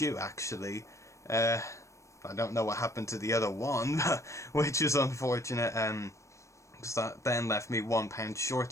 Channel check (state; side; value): late; right; 0.15 ms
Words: actually. I don't know what happened to the other one, which is unfortunate. Because that then left me £1